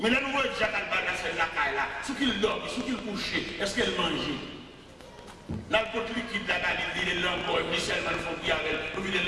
le nouveau Jacques Albala, c'est la caille là. Ce qu'il dort, ce qu'il couche, est-ce qu'elle mange? Là, le côté liquide là, il dit les langues, il dit seulement il faut qu'il y ait les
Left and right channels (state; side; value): identical; both; correlation 1.00